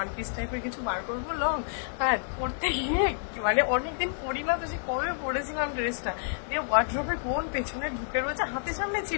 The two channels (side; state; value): right; silent; 58 dB below the other